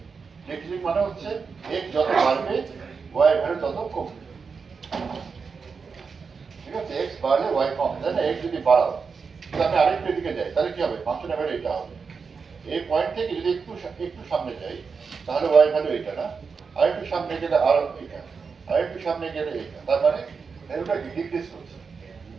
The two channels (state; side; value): quieter; left; 5.3 dB